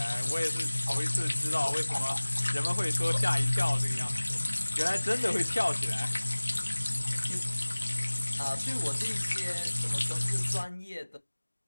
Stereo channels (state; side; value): inverted; both; correlation -1.00